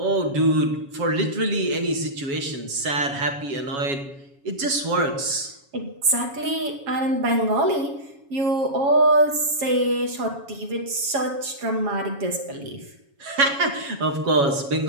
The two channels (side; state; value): left; late; 7.2 ms